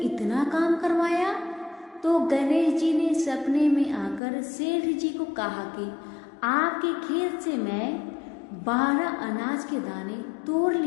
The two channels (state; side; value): drops out; right; at 4.2 s